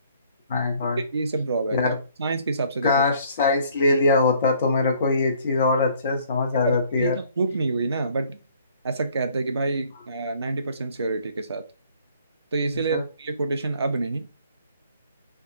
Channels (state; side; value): inverted; both; correlation -0.60